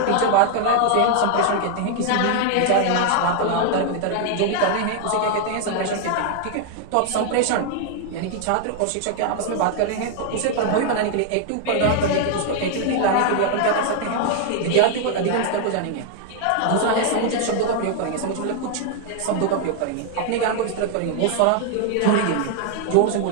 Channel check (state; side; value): different; both; correlation 0.00